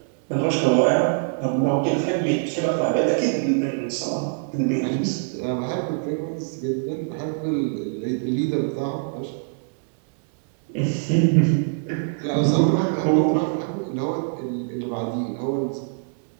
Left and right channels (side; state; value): left; silent; digital silence